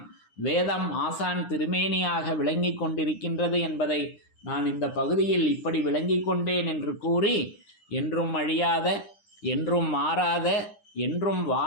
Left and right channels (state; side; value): late; right; 9.8 ms